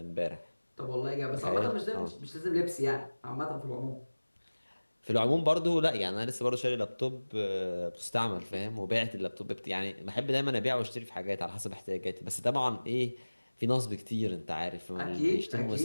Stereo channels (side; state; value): both; inverted; correlation -1.00